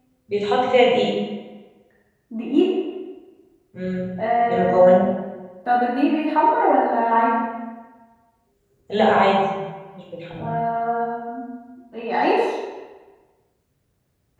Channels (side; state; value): both; identical; correlation 1.00